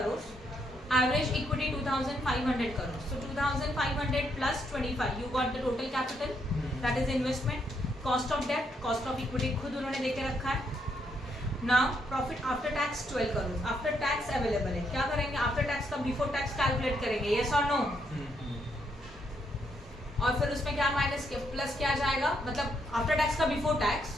Average equity 2500 crores. So 2500 plus 25. You got the total capital. That is investment. Cost of debt, cost of equity खुद उन्होंने देके रखा है. Now profit after tax 12 crores. After tax available है. क्या करेंगे? After tax का before tax calculate करेंगे. Yes or no? और फिर उसमें क्या माइनस प्लस क्या जाएगा, मतलब आफ्टर टैक्स का बिफोर टैक्स,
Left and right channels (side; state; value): both; normal; correlation 0.76